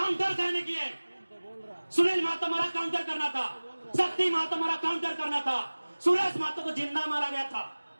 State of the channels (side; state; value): both; inverted; correlation -1.00